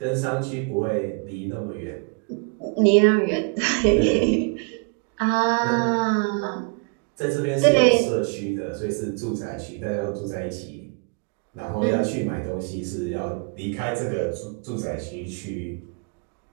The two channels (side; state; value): left; quieter; 36.5 dB